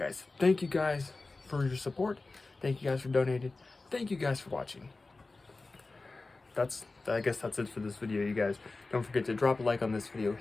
Thank you guys for your support. Thank you guys for donating. Thank you guys for watching. I guess that's it for this video, you guys. Don't forget to drop a like on this video,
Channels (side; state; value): right; quieter; 3.5 dB